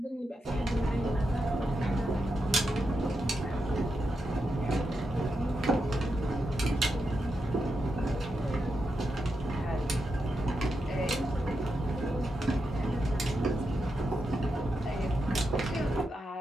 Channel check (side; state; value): both; normal; correlation 0.86